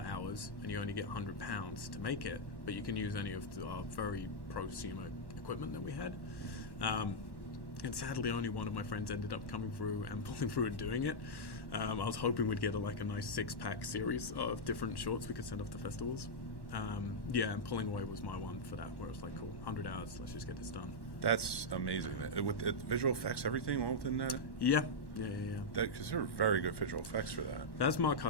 and you only get £100 to make it, but you can use any of our very prosumer equipment that we had. And sadly, only one of my friends ended up coming through and pulling through and doing it. I was hoping we'd get a nice 6-pack series of different shorts we could send off to festivals. And Pulling Away was my one for that, where it was like, cool, 100 hours, let's just get this done. That's amazing. With visual effects, everything all within that? Yeah. Because there are very good visual effects for that. That's Mark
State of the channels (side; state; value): right; late; 1.1 ms